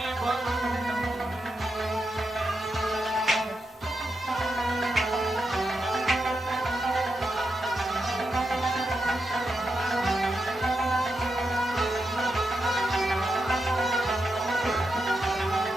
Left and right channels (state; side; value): normal; both; correlation 0.86